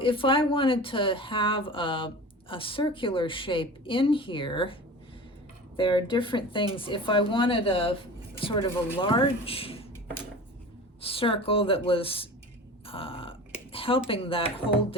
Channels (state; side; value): normal; both; correlation 0.36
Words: I wanted to have a circular shape in here, there are different things. If I wanted a sort of a large circle that was helping that hold